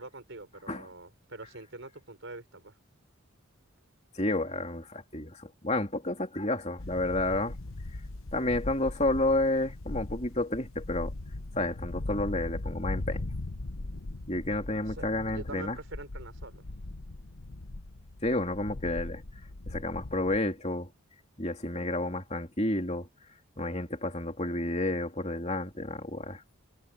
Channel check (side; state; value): both; normal; correlation 0.39